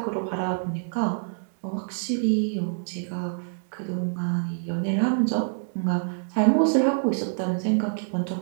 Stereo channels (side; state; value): left; silent; digital silence